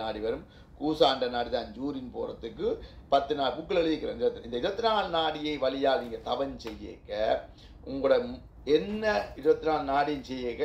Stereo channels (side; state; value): both; identical; correlation 1.00